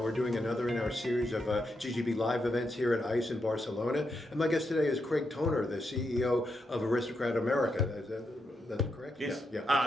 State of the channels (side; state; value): both; normal; correlation 0.83